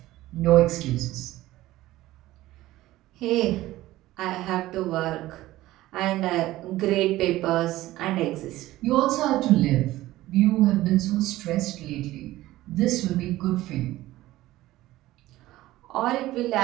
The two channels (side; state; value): left; quieter; 16.4 dB